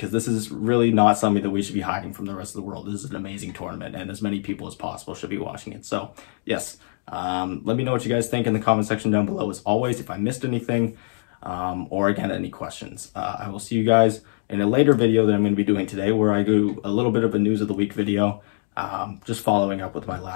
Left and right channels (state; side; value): silent; right; 63 dB below the other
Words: this is really not something that we should be hiding from the rest of the world. This is an amazing tournament, and as many people as possible should be watching it. So yes, let me know what you guys think in the comment section down below, as always, if I missed anything, or again, any questions. I will see you guys in a later video that I'm going to be doing today, where I do a little bit of a news of the week video. just following up with my